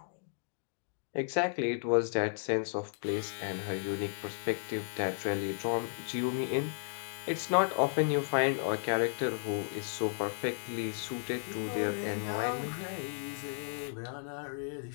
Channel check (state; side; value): silent; right; digital silence